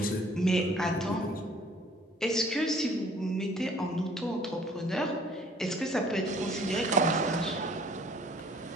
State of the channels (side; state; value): both; normal; correlation 0.56